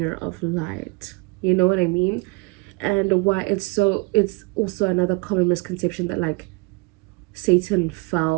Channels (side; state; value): left; quieter; 27.9 dB